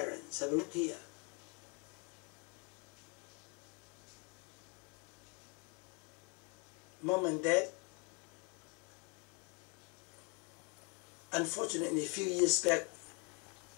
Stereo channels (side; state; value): right; quieter; 33.3 dB